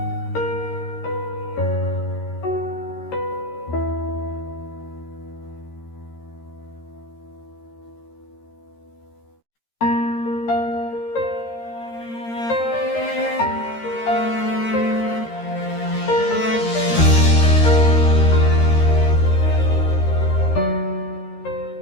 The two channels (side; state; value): right; late; 13 ms